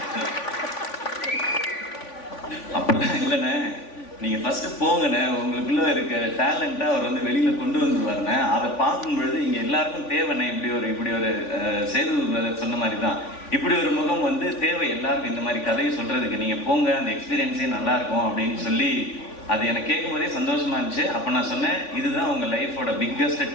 அப்படிலாம் இல்லைண்ணே, நீங்கள் ஃபஸ்ட்டு போங்கண்ணே, உங்களுக்குள்ளே இருக்க டேலண்ட்டை அவர் வெளியில் கொண்டு வந்துருவாருண்ணே. அதை பார்க்கும் பொழுது இங்கே எல்லாருக்கும் தேவைண்ணே. இப்படி ஒரு சேது சொன்ன மாதிரி தான் இப்படி ஒரு முகம் வந்து தேவை எல்லாருக்கும். இந்த மாதிரி கதையை சொல்கிறதுக்கு நீங்கள் போங்க, அந்த எக்ஸ்பீரியன்ஸே நல்லாயிருக்கும் அப்படின்னு சொல்லி அது எனக்கு கேட்கும்போதே சந்தோஷமாக இருந்துச்சு. அப்போ நான் சொன்னேன், இதுதான் உங்கள் லைஃபோட பிக்கஸ்ட்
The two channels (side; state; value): right; late; 3.5 ms